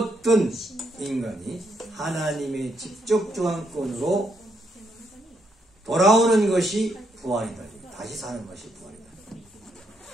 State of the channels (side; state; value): both; normal; correlation 0.77